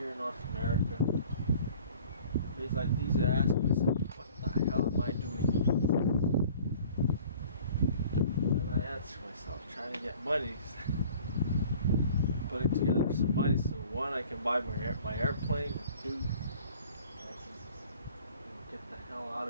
in North America. Days like these, I ask myself, what the hell am I doing? And I answer myself, trying to get money. Putting together some money so one, I can buy my airplane, and two, I can get the hell out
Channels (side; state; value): both; inverted; correlation -0.50